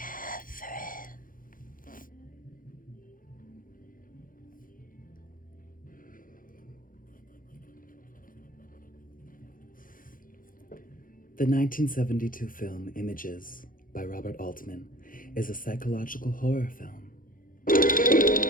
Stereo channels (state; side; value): late; right; 0.40 ms